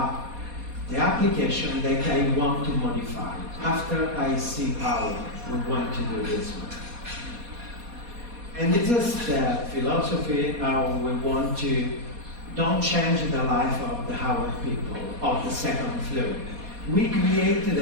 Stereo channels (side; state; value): left; late; 4.2 ms